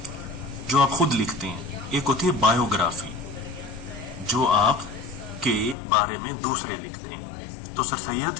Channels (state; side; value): drops out; right; at 5.8 s